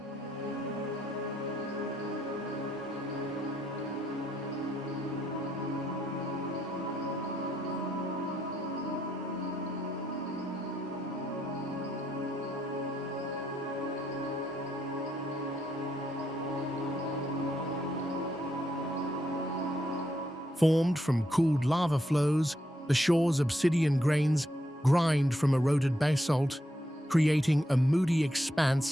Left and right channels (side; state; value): both; normal; correlation 0.78